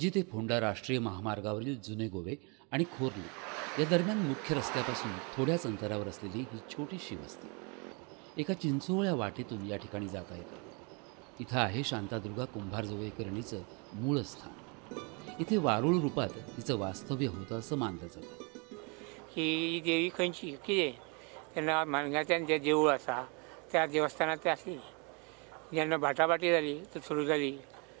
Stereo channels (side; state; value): left; quieter; 33.1 dB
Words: ते फोंडा राष्ट्रीय महामार्गावरील जुने गोवे आणि खोर्ली या दरम्यान मुख्य रस्त्यापासून थोड्याच अंतरावर असलेली ही छोटीशी वस्ती एका चिंचोळ्या वाटेतून या ठिकाणी जाता येते। इथं आहे शांतादुर्गा कुंभारजुवेकरणीचं मूळ स्थान। इथे वारुळ रूपात तिचं वास्तव्य होतं असं मानलं जातं। ही देवी खंयची कितें तेन्ना मानगांतल्यान जें देवूळ आसा त्या देवस्थानांत ते आसली। जेन्ना बाटाबाटी जाली तर सुरू जाली